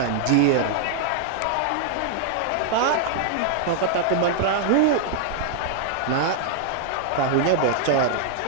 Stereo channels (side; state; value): both; different; correlation -0.01